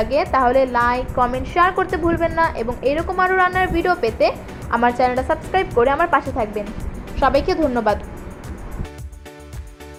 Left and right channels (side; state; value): both; identical; correlation 1.00